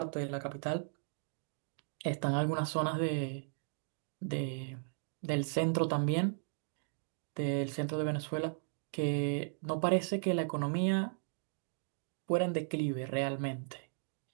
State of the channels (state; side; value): silent; left; digital silence